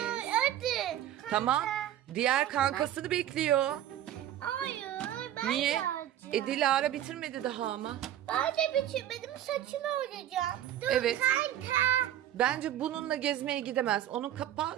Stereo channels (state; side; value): quieter; left; 11.8 dB